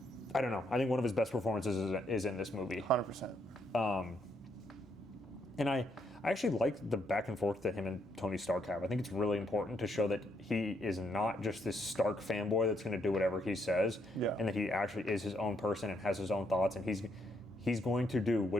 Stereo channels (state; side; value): normal; both; correlation 0.75